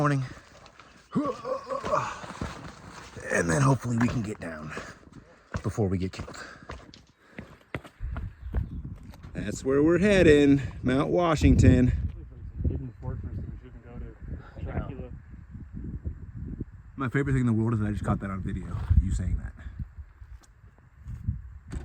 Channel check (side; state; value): both; identical; correlation 1.00